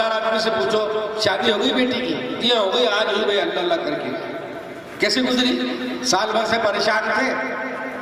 آدمی سے پوچھو شادی ہو گئی بیٹی کی؟ جی ہو گئی، آج ہوئی بھائی، اللہ اللہ کر کے۔ کیسے گزری؟ سال بھر سے پریشان تھے،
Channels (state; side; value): identical; both; correlation 1.00